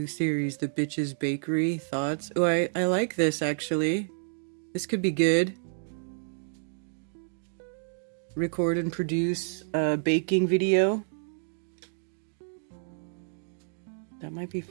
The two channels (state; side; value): silent; left; digital silence